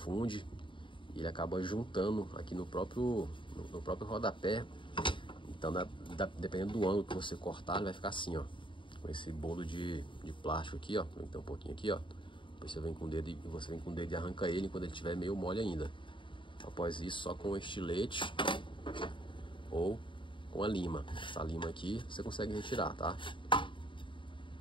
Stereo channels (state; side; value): late; right; 0.24 ms